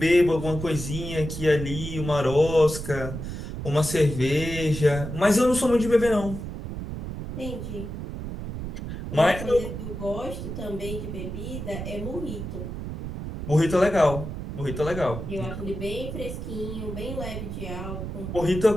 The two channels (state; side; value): noise; right; rumble, 7 dB below the sound